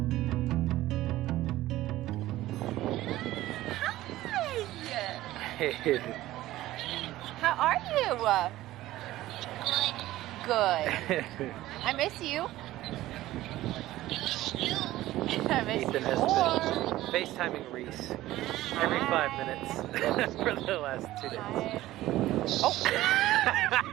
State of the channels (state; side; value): quieter; left; 15.7 dB